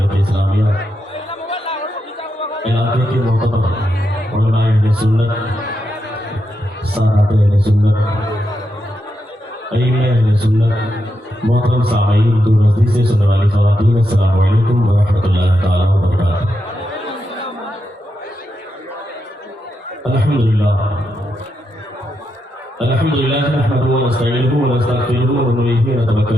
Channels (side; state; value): both; normal; correlation 0.84